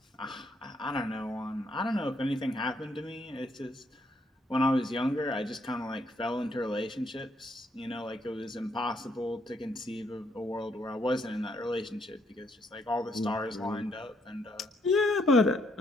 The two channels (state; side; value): normal; both; correlation 0.72